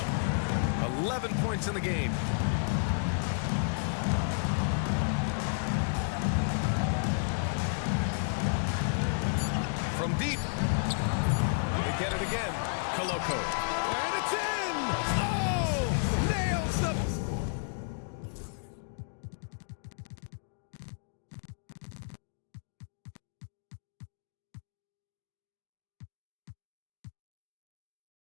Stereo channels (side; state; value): right; silent; digital silence